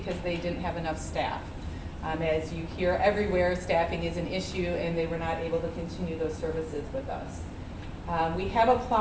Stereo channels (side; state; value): both; identical; correlation 1.00